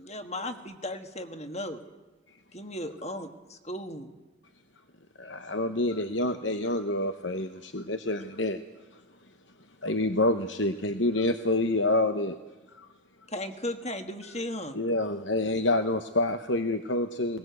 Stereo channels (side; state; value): both; normal; correlation -0.06